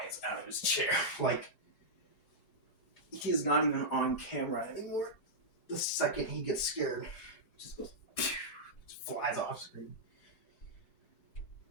out of his chair. Like, he's not even on camera anymore. The second he gets scared, just goes, just flies off screen.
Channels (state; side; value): late; right; 3.9 ms